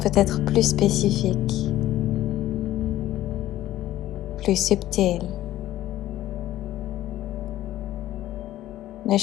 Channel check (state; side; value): quieter; right; 14.2 dB